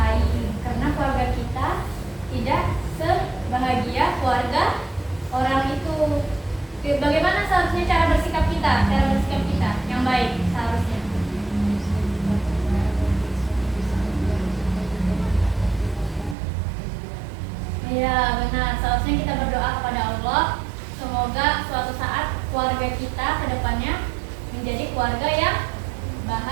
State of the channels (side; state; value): left; drops out; at 16.4 s